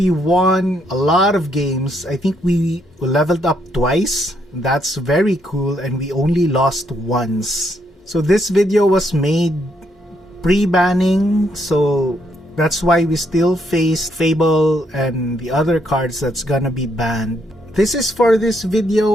won a lot of games. I think we leveled up twice. That's very cool, and we only lost once. So this video was made pre-banning, so that's why we still face Fable and the other cards that's gonna be banned. This is for this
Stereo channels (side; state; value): both; normal; correlation 0.74